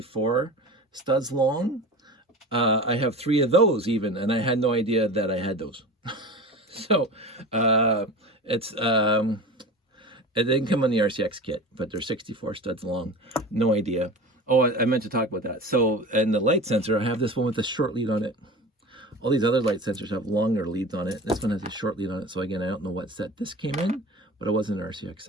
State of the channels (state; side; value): normal; both; correlation 0.33